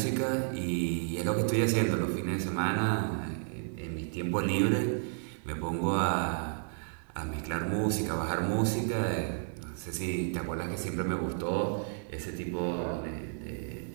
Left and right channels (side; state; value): left; silent; 56 dB below the other